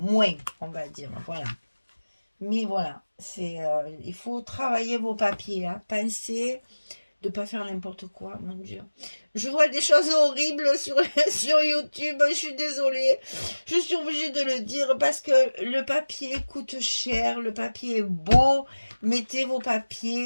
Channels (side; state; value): both; inverted; correlation -1.00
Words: on va dire. Voilà. Mais voilà, il faut travailler vos papiers, hein. Pensez de ne pas faire n'importe quoi, mon Dieu. Je vois des choses horribles sur, sur YouTube, je suis désolée. Je suis obligée de le dire parce que le papier coûte cher, le papier est beau. Mettez vos